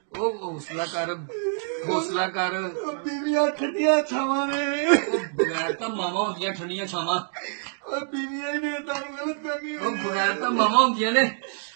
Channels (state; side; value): silent; left; digital silence